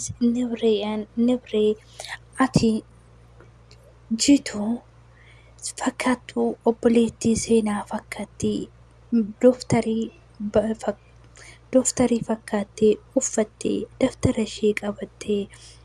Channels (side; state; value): both; identical; correlation 1.00